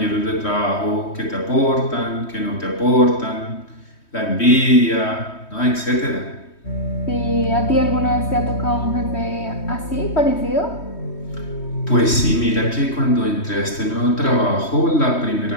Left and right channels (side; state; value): right; late; 3.2 ms